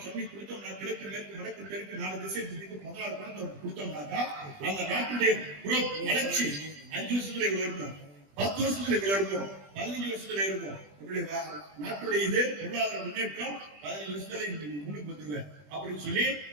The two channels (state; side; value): late; left; 20 ms